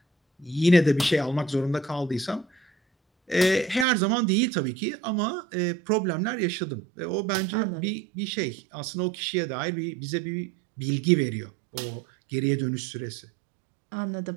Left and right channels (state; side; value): drops out; left; at 3.9 s